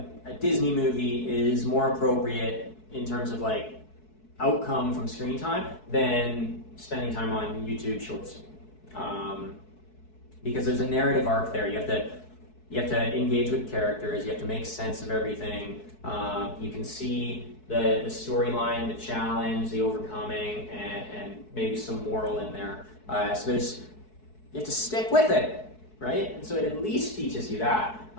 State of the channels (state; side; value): late; right; 4.6 ms